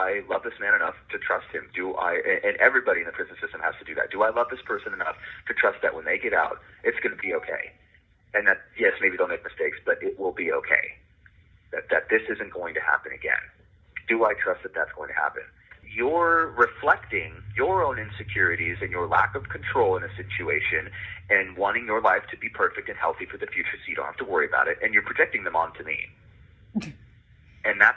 love this man enough to trust him? And everybody in the prison system has to do that. Do I love this person enough to trust that when they get out, it's going to be okay? And that, yes, maybe they'll make mistakes, but it will be okay. That this isn't going to happen again. Do I trust that that's going to happen? you're reflecting your own insecurities and your lack of control in a situation and wanting your life to be perfect and healthy for the future so you don't have to worry about it, and you're projecting them onto me. And that's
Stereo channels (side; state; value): both; identical; correlation 1.00